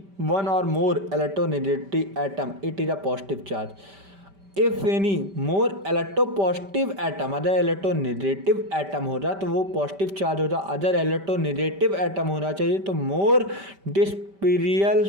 one or more electronegative atom it is a positive charge, if any more electropositive atom other electronegative atom हो जाए तो वो पॉजिटिव चार्ज हो जाए, अदर electronegative atom होना चाहिए तो मोर डिस्पेरियल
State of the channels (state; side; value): late; left; 5.1 ms